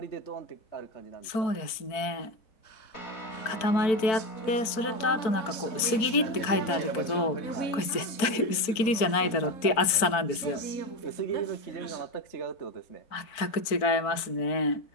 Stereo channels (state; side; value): late; right; 4.5 ms